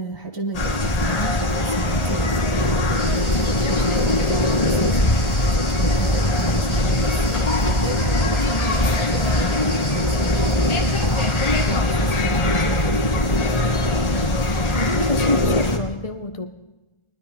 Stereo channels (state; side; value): late; right; 1.4 ms